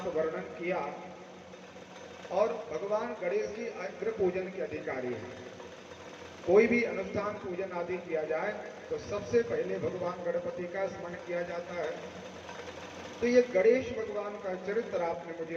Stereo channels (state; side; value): identical; both; correlation 1.00